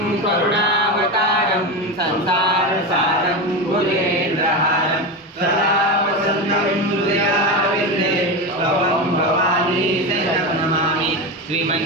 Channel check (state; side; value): normal; both; correlation 0.18